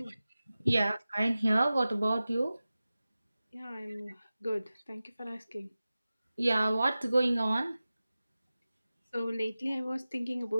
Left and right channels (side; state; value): both; inverted; correlation -0.96